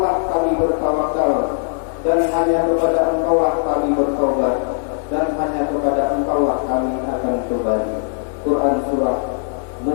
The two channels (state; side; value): silent; right; digital silence